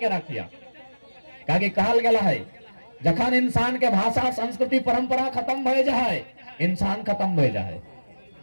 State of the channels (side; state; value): both; inverted; correlation -1.00